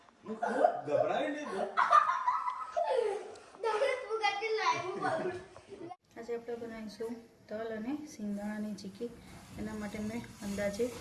ગભરાય નહીં તો. આજે આપણે બનાવીશું તલ અને સિંગદાણાની ચીક્કી. એના માટે મેં અંદાજે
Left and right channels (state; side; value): identical; both; correlation 1.00